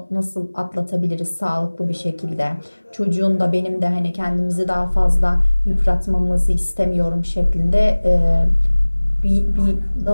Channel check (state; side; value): inverted; both; correlation -1.00